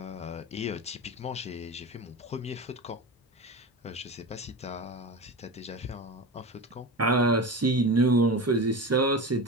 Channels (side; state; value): both; normal; correlation 0.27